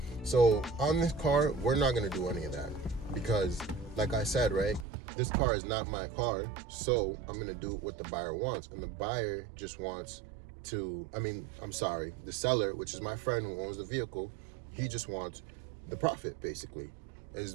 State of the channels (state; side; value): drops out; left; at 4.9 s